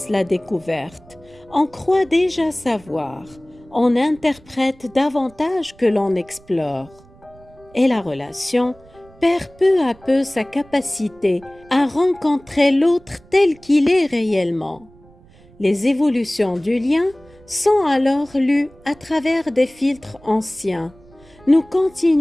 la découverte. On croit déjà savoir, on interprète davantage que l'on explore. Et la relation perd peu à peu sa capacité à rencontrer l'autre tel qu'il est réellement. Les évolutions du lien sont alors lues à travers des filtres anciens. Nous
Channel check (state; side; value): noise; right; rumble, 26 dB below the sound